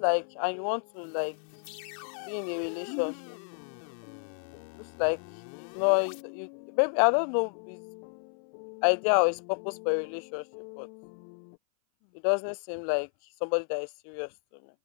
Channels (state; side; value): silent; right; 57 dB below the other